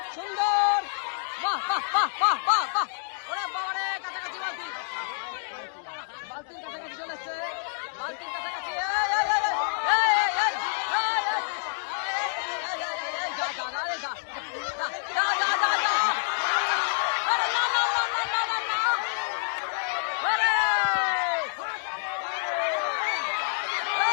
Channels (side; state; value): right; silent; digital silence